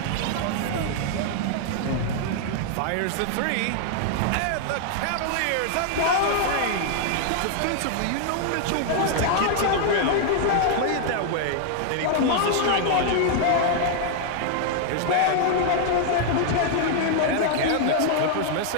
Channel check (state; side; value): different; both; correlation 0.00